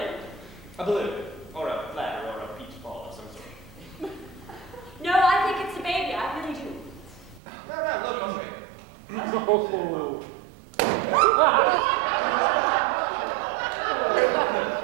A balloon. Or a bladder or a peach ball of some sort. No, I think it's a baby. I really do. No, look, I'll show you.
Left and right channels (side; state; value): left; drops out; at 7.4 s